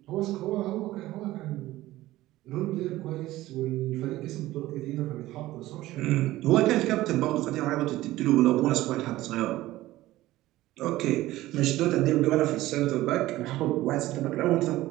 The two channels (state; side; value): quieter; left; 16.5 dB